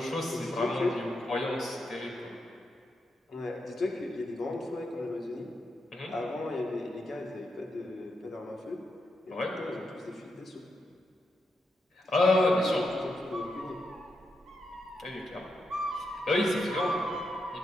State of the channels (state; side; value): normal; both; correlation 0.84